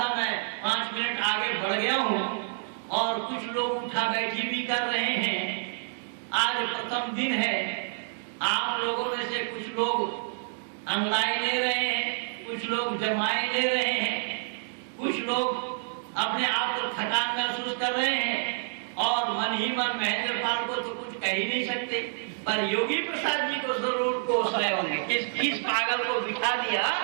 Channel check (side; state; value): left; silent; digital silence